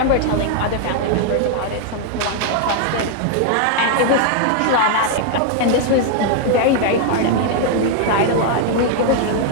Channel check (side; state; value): both; different; correlation 0.00